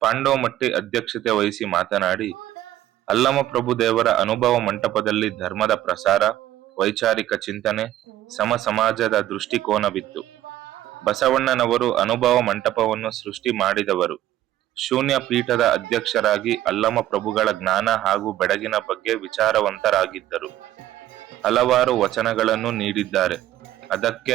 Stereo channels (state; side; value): quieter; left; 13.6 dB